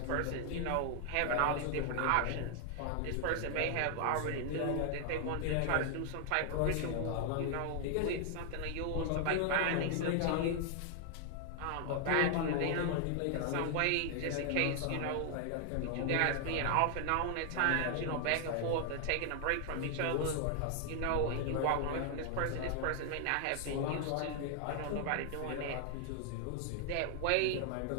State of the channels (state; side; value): different; both; correlation 0.00